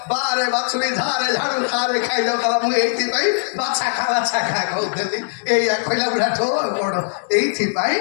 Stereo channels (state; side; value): silent; right; digital silence